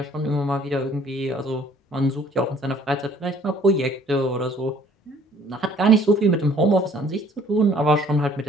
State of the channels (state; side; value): normal; both; correlation 0.57